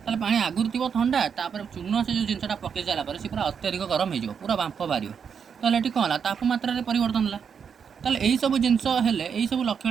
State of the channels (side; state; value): left; quieter; 6.9 dB